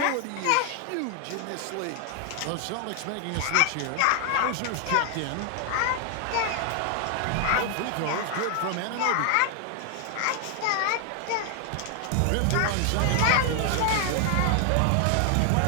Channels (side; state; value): both; different; correlation 0.00